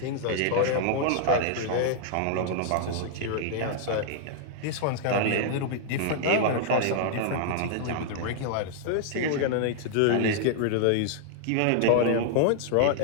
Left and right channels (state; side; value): different; both; correlation -0.01